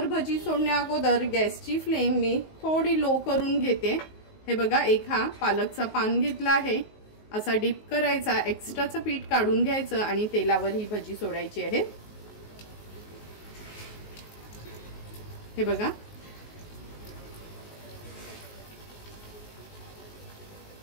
भजी सोडण्या अगोदर गॅसची फ्लेम मी थोडी लो करून घेते। हे बघा एक हा पालकचा पान घेतला आहे, असा डीप करायचा, एक्स्ट्राचं पीठ काढून घ्यायचं आणि तेलावर ही भजी सोडायची आहे। हे बघा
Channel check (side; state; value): right; late; 19 ms